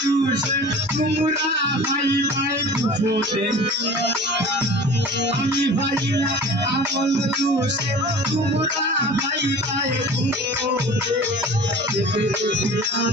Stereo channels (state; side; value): normal; both; correlation 0.41